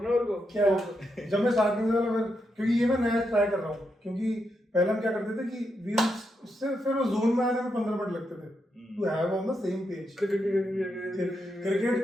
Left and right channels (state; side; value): normal; both; correlation 0.83